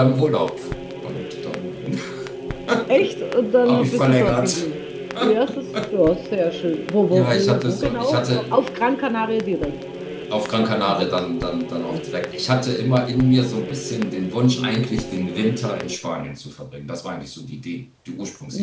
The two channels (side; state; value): both; identical; correlation 1.00